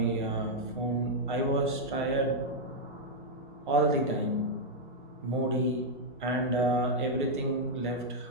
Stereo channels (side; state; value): both; normal; correlation -0.03